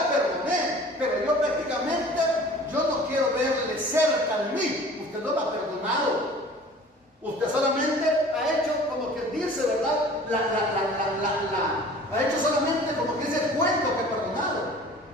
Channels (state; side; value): normal; both; correlation 0.46